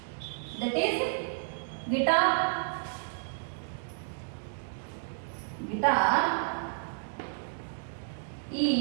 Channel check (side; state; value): left; silent; digital silence